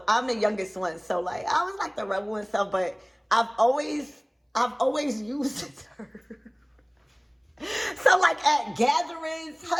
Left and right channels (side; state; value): both; identical; correlation 1.00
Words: I'm the youngest one. So like I was like the rebel and stuff, but I've always used it. So like at gatherings,